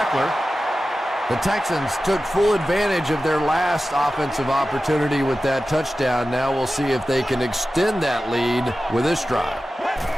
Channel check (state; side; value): normal; both; correlation 0.94